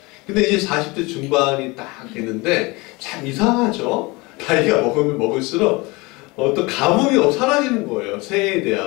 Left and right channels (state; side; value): quieter; right; 24.6 dB